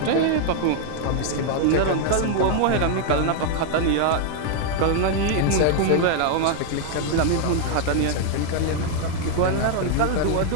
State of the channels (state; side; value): different; both; correlation 0.00